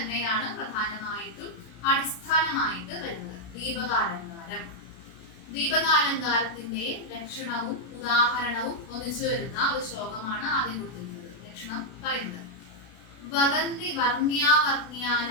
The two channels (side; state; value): right; late; 32 ms